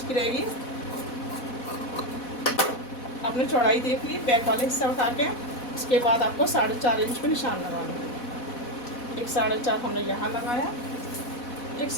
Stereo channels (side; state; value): right; late; 4.1 ms